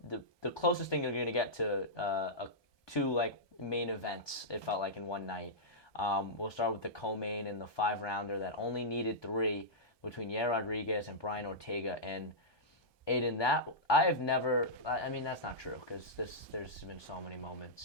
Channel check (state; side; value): late; right; 1.2 ms